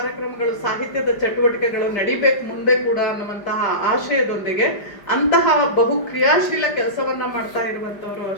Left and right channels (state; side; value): late; right; 5.0 ms